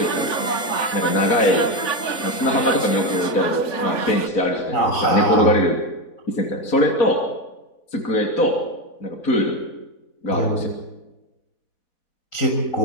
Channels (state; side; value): late; right; 4.1 ms